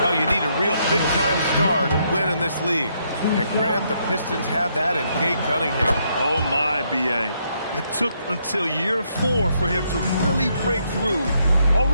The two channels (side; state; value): both; inverted; correlation -0.74